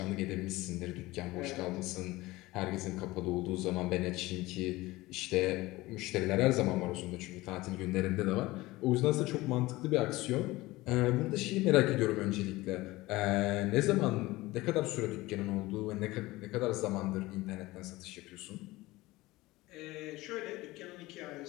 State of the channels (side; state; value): right; quieter; 19.4 dB